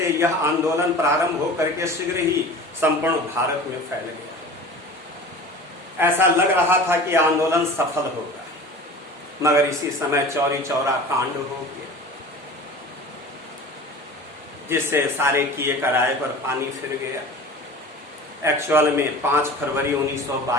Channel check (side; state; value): both; normal; correlation 0.39